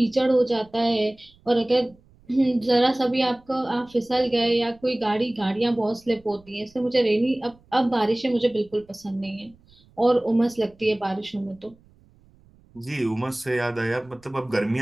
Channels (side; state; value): right; noise; rumble, 29 dB below the sound